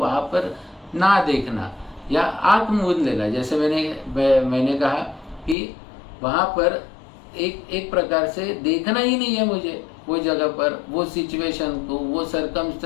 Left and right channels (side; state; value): right; drops out; at 5.6 s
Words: पर ना देखना, या आंख मूंद लेना। जैसे मैंने कहा कि वहां पर एक प्रकार से देखना ही नहीं है मुझे, वो जगह पर, वो सिचुएशन को, वो